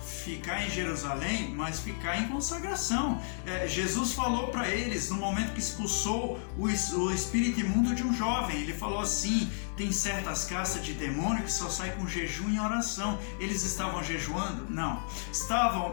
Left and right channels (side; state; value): right; silent; digital silence